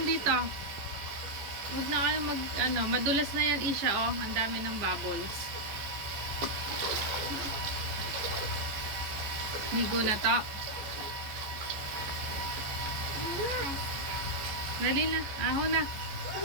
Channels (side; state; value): left; late; 14 ms